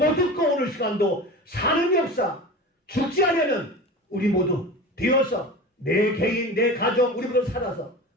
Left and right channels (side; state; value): both; normal; correlation 0.32